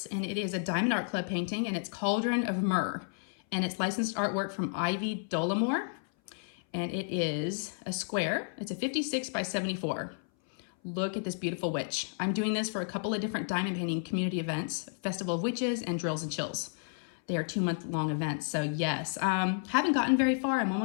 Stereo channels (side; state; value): right; silent; 57 dB below the other